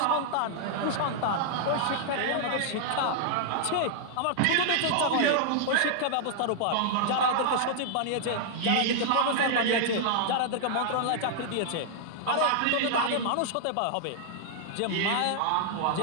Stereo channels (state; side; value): different; both; correlation -0.01